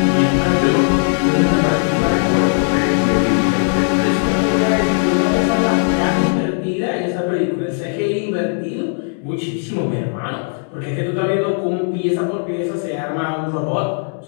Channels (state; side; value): silent; right; 60 dB below the other